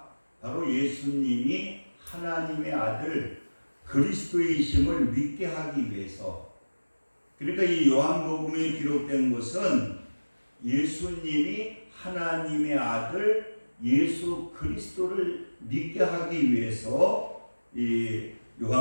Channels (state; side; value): inverted; both; correlation -1.00